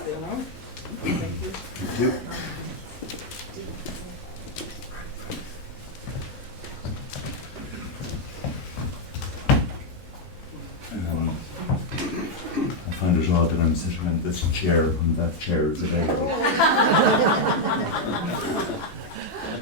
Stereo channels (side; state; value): both; normal; correlation 0.00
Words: there now. Thank you. Thank you. I find it odd that I'm sitting in this chair when that chair is available.